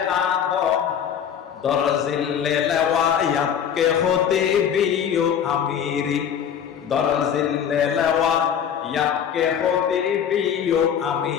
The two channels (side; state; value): right; quieter; 8.4 dB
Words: আদম দরজিল্লে লওয়ায়াতকে হতে বিও আমিরি দরজিল্লে লওয়ায়াতকে হতে বিও